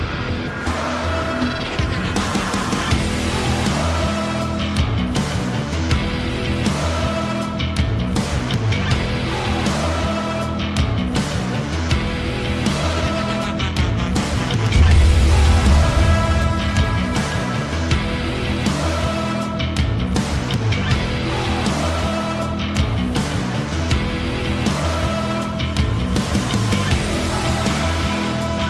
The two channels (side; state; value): both; identical; correlation 1.00